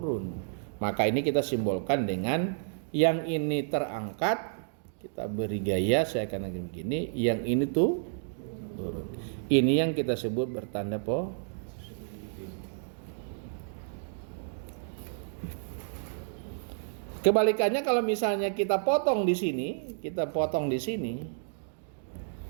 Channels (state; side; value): silent; left; digital silence